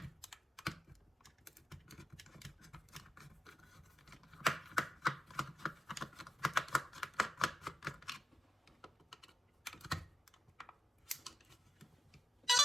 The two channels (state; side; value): normal; both; correlation 0.89